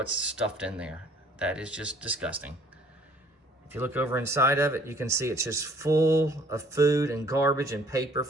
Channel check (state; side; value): normal; both; correlation 0.57